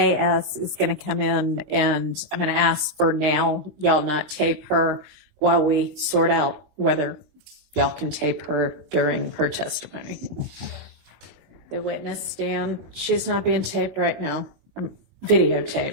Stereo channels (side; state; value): left; late; 20 ms